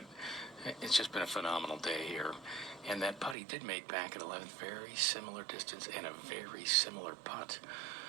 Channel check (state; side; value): drops out; left; at 3.4 s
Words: it's just been a phenomenal day here. And that putt he did make back at 11th, very similar distance and a very similar putt.